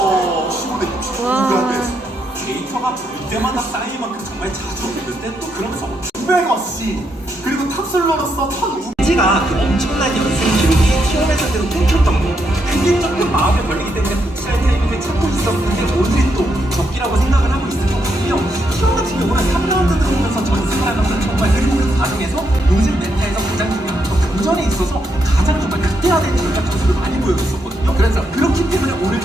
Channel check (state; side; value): normal; both; correlation 0.79